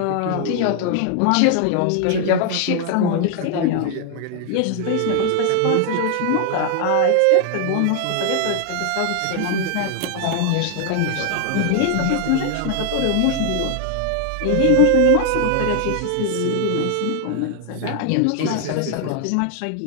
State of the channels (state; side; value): different; both; correlation 0.00